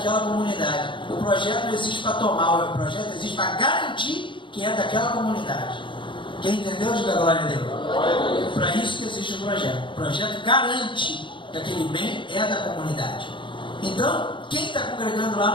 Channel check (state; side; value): late; right; 0.24 ms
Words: comunidade. O projeto não existe para tomar, o projeto existe para garantir que é daquela comunidade. Quem entendeu, diga glória a Deus. Para isso que existe o projeto. O projeto garante que aquele bem é da comunidade. Então, quem está congregando